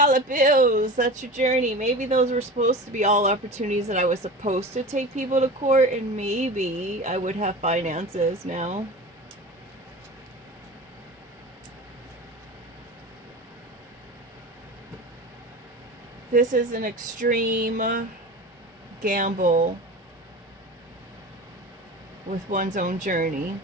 bills. That's your journey. Maybe those were supposed to be all opportunities that I was supposed to take people to court, and maybe I would have finances now. This is an extreme gamble with one's own journey.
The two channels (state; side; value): normal; both; correlation 0.32